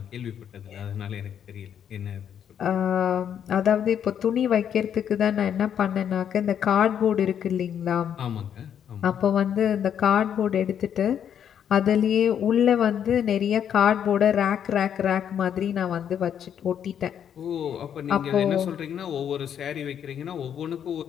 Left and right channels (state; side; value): quieter; right; 8.9 dB